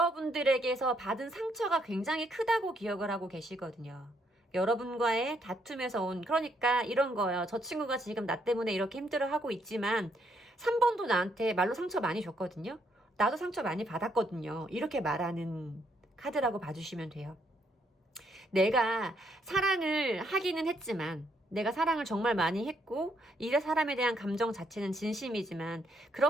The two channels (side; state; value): both; normal; correlation 0.73